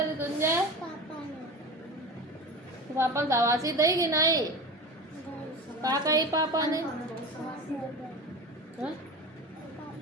ऋतुंजय पापा शाबाशी दी कि नहीं? का कही पापा ने?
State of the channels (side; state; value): both; normal; correlation 0.30